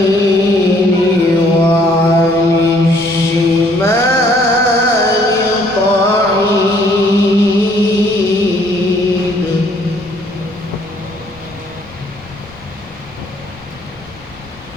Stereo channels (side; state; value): left; noise; rumble, 23 dB below the sound